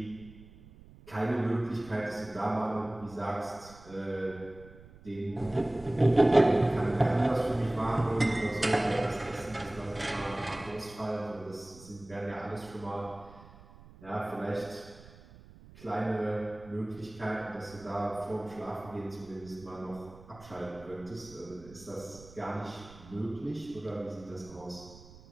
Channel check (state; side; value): noise; right; rumble, 20 dB below the sound